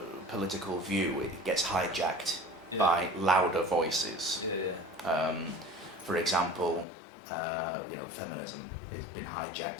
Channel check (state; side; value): drops out; right; at 6.9 s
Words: political view, it gets hijacked by louder voices. For example, feminism has been